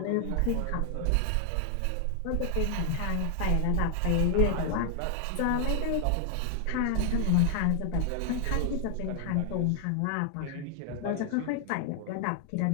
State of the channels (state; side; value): different; both; correlation 0.00